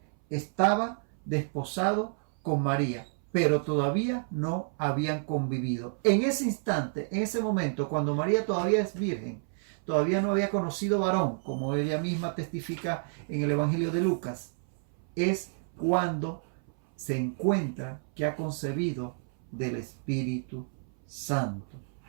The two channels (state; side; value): silent; left; 58 dB below the other